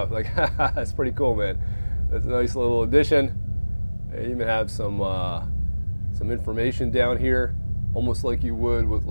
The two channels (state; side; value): inverted; both; correlation -1.00